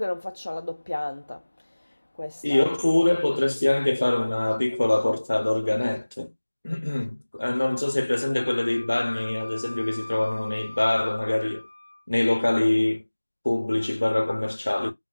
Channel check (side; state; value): both; inverted; correlation -1.00